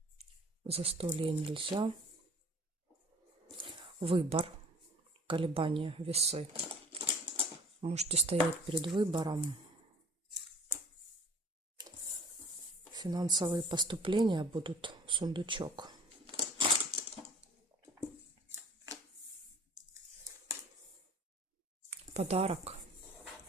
Застолье нельзя. Выбор, колебания, весы. Можете стоять перед выбором. Финансовые поступления будут, сундучок. Подарок.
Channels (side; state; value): both; normal; correlation 0.49